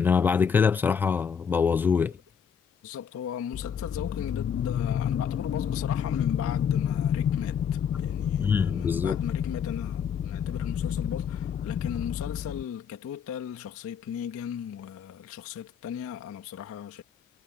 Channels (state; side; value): quieter; right; 7.3 dB